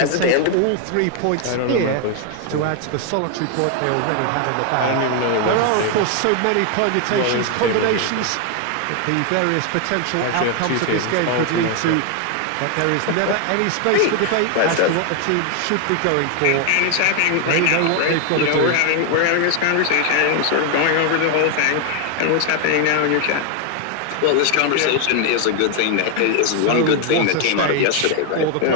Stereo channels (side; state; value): both; different; correlation 0.01